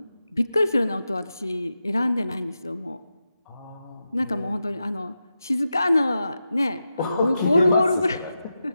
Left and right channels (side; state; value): both; inverted; correlation -0.90